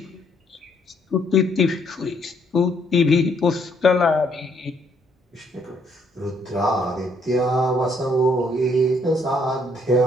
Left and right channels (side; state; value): both; normal; correlation 0.69